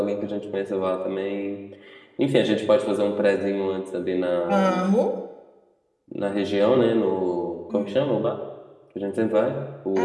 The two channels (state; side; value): identical; both; correlation 1.00